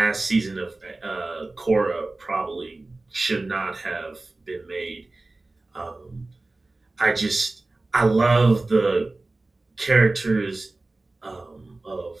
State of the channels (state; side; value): quieter; left; 3.1 dB